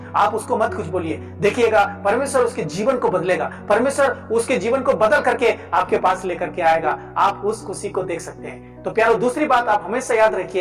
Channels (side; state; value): both; identical; correlation 1.00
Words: आप उसको मत कुछ बोलिए। देखिएगा परमेश्वर उसके जीवन को बदलेगा, परमेश्वर उसके जीवन को बदल करके आपके पास लेकर के आएगा। आप उस खुशी को देख सकते हैं। तो प्यारो, दूसरी बात आप हमेशा याद